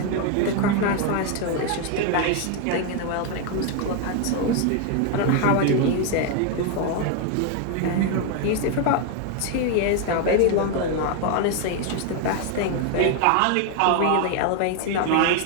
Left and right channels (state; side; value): different; both; correlation 0.01